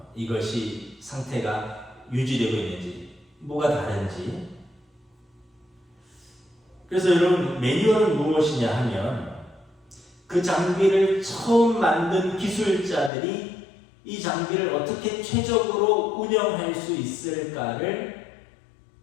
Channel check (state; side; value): drops out; right; at 13.1 s